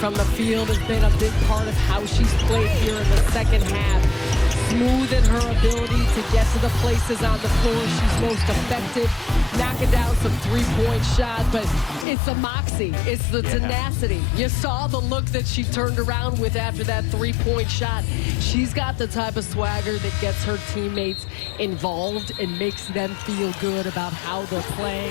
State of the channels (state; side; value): drops out; right; at 12.1 s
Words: the field has been a big part of how she's played here in the second half. Smooth in her ability to get to the places on the floor she's most effective, knocking down some three-point shots, but it's the moxie, it's the tenacity. You saw the look that she turned around with after that three-point shot. She's got the type of swagger that gets her teammates involved and makes them feel good about how they're